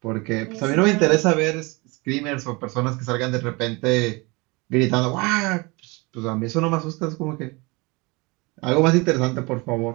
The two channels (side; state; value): left; quieter; 26.1 dB